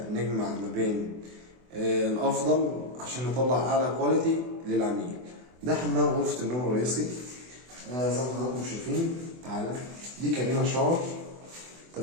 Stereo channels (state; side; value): late; left; 24 ms